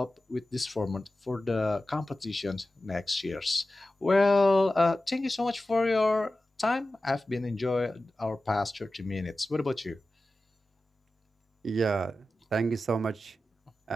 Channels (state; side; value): normal; both; correlation 0.94